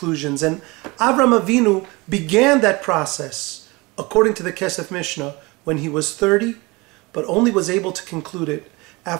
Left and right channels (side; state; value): left; quieter; 24.4 dB